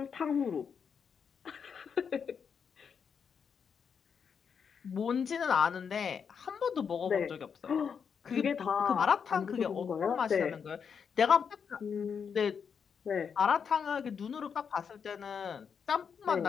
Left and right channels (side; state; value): right; quieter; 6.7 dB